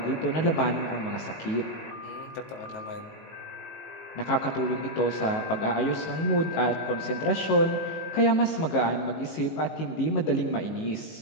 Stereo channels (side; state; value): right; late; 19 ms